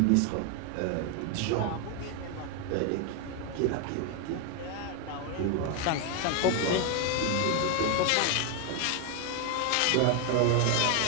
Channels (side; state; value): both; different; correlation 0.01